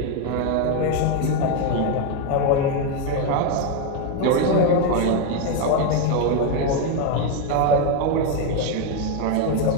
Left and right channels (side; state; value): both; different; correlation 0.02